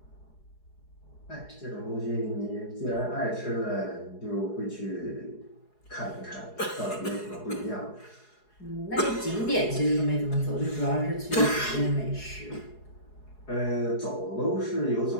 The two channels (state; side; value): late; right; 4.8 ms